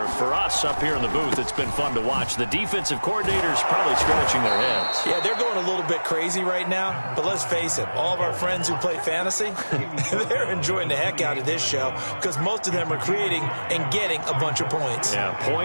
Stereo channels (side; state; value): both; inverted; correlation -1.00